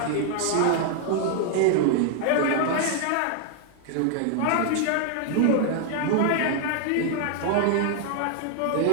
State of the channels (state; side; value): different; both; correlation 0.00